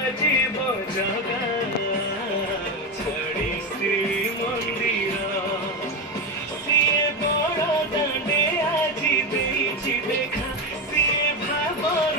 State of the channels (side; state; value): both; normal; correlation 0.14